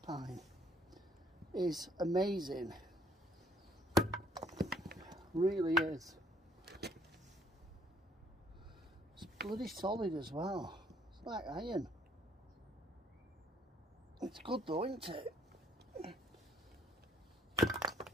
pine, is amazing. Really is. It's bloody solid as well. It's like iron. It's good though, isn't it?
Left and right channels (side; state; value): both; normal; correlation 0.63